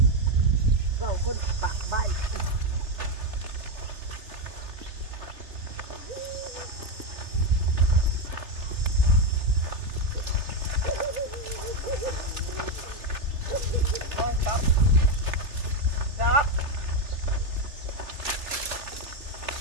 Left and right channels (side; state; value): left; late; 3.4 ms